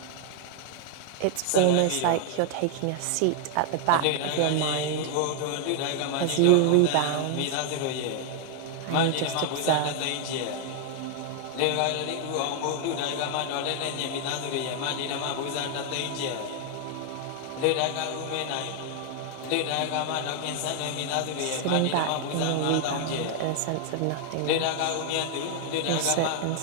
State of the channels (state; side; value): different; both; correlation 0.00